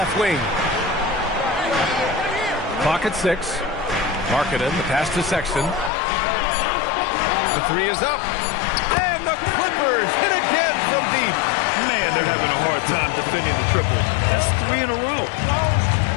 wing. Clock at 6. Markkanen, the pass to Sexton. The three is up. And the Clippers hit again from deep. Man, they're having a hard time defending the triple. That's 3 in a row.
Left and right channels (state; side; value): drops out; right; at 5.9 s